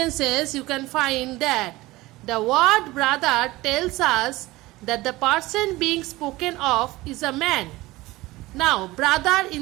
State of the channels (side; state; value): left; quieter; 19.5 dB